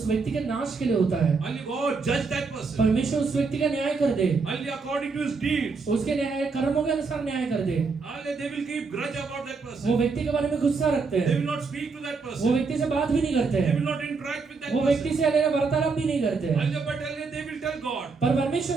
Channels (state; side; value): quieter; left; 4.6 dB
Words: व्यक्ति के नाश के लिए होता है। Only God judge that person. परमेश्वर उस व्यक्ति का न्याय कर दे, Only according to his deeds. उसके न्याय कर्मों के अनुसार न्याय कर दे। Only they will keep grudge about that वो person. व्यक्ति के बारे में गुस्सा रखते They हैं, will not speak to that वो person. व्यक्ति से बात भी नहीं करते They हैं, will not interact with that वो व्यक्ति person. से हलेला वार्तालाप भी नहीं करते हैं। Only but only they will tell God, पर परमेश्वर